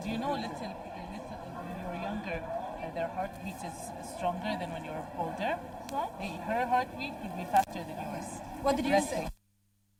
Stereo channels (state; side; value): identical; both; correlation 1.00